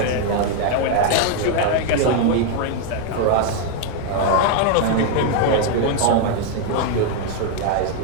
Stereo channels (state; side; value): different; both; correlation 0.00